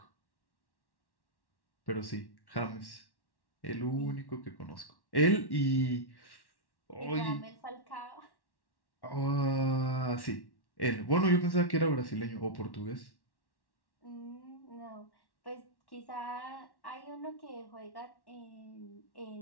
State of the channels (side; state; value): right; late; 1.1 ms